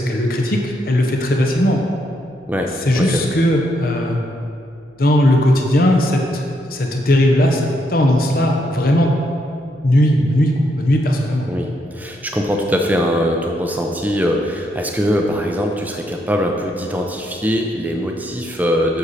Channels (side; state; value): left; noise; hum, 30 dB below the sound